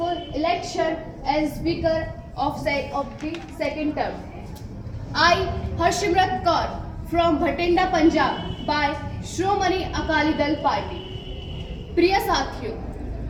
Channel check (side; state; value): both; identical; correlation 1.00